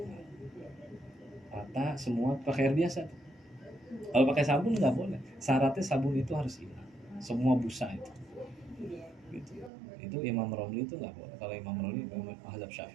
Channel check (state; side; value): drops out; left; at 9.7 s